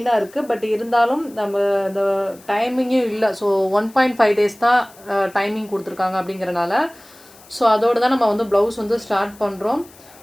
இருக்குது. பட் இருந்தாலும் நம்ம இந்த டைமிங்கும் இல்லை. ஸோ 1.5 days தான் டைமிங் கொடுத்துருக்காங்க அப்படிங்கிறனால ஸோ அதோடு தான் நம்ம வந்து ப்ளவுஸ் வந்து ஸ்டார்ட் பண்ணுறோம்.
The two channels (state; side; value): noise; left; hiss, 24 dB below the sound